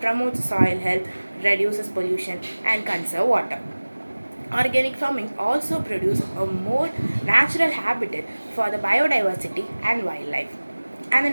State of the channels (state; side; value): inverted; both; correlation -1.00